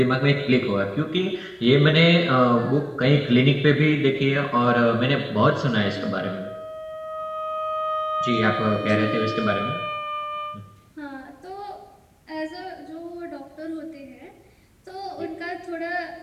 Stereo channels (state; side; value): identical; both; correlation 1.00